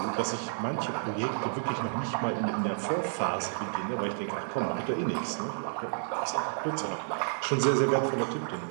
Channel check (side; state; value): left; silent; digital silence